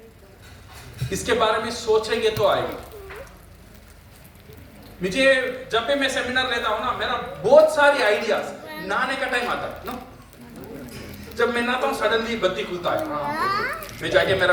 इसके बारे में सोचेंगे तो आएगा। मुझे जब भी मैं सेमिनार लेता हूं ना, मेरा बहुत सारी आइडियाज, नहाने का टाइम आता है ना, जब मैं नहाता हूं सडनली बत्ती खुलता है, मैं जाके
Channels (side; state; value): both; identical; correlation 1.00